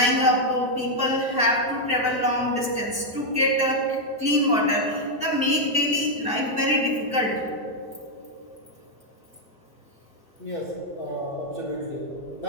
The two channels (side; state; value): both; normal; correlation 0.00